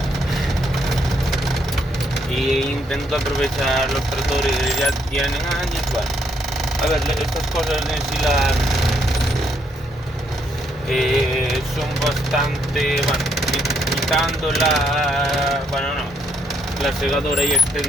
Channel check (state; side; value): normal; both; correlation 0.73